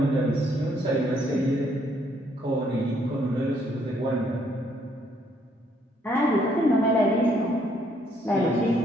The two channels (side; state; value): both; normal; correlation 0.69